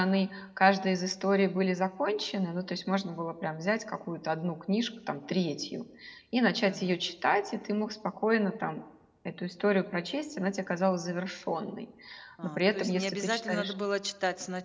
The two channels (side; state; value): both; identical; correlation 1.00